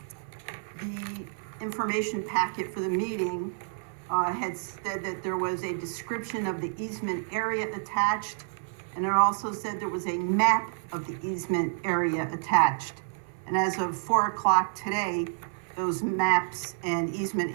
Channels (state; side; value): silent; left; 57 dB below the other